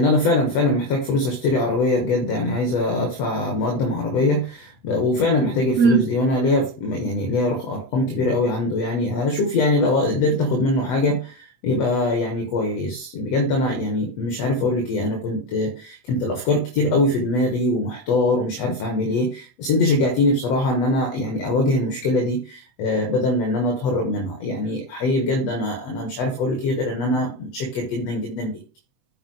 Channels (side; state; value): right; late; 8.1 ms